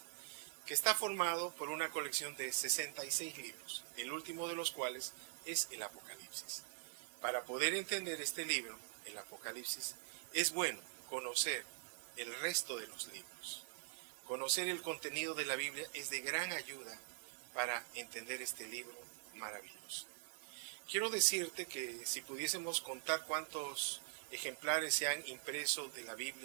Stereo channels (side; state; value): left; silent; digital silence